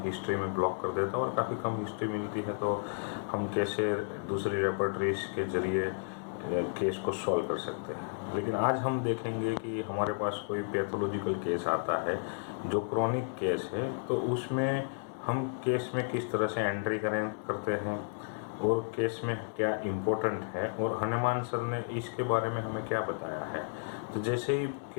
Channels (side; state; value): right; silent; digital silence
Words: हिस्ट्री में ब्लॉक कर देता और काफ़ी कम हिस्ट्री मिलती है, तो हम कैसे दूसरी रेपर्टरीज के जरिए केस को सॉल्व कर सकते हैं। लेकिन आज हम देखेंगे कि हमारे पास कोई पैथोलॉजिकल केस आता है जो क्रॉनिक केस है, तो उसमें हम केस में किस तरह से एंट्री करते हैं और केस में क्या इम्पोर्टेंट है, और हनुमान सर ने इसके बारे में हमें क्या बताया है। तो जैसे ही